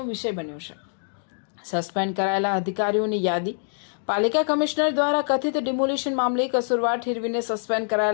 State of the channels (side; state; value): right; silent; digital silence